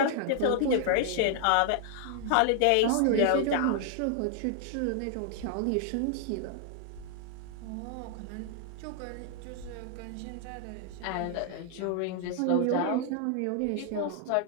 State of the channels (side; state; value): both; different; correlation 0.00